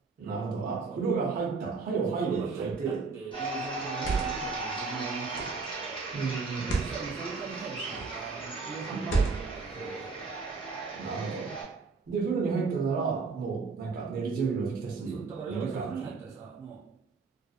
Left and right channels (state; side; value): quieter; left; 4.3 dB